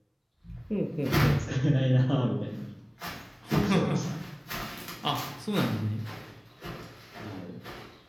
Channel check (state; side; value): identical; both; correlation 1.00